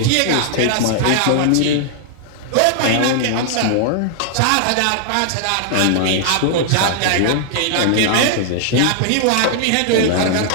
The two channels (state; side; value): different; both; correlation 0.00